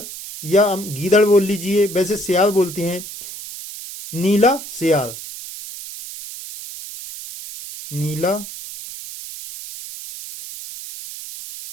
या हम गीदड़ बोल लीजिए, वैसे सियार बोलते हैं। नीला सियार, नीला।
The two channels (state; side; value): noise; right; hiss, 12 dB below the sound